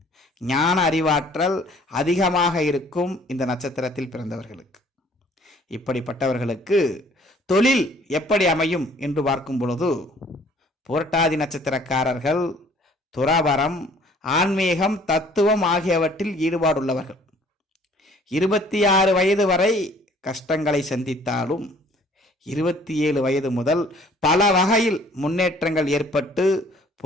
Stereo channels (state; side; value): normal; both; correlation 0.56